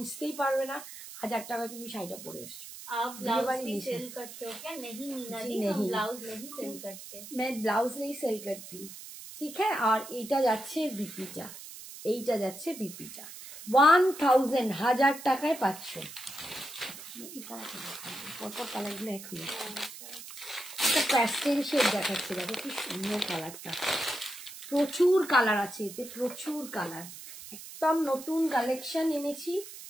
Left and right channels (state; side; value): noise; right; hiss, 13 dB below the sound